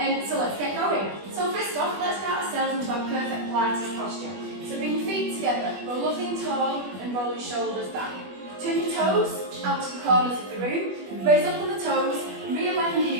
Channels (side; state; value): left; late; 21 ms